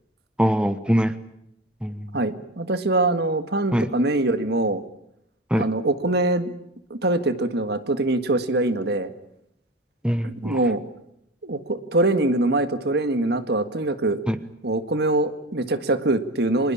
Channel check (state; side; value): normal; both; correlation 0.30